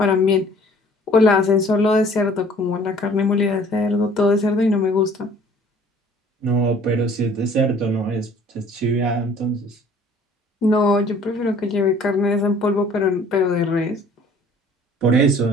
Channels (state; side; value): normal; both; correlation 0.53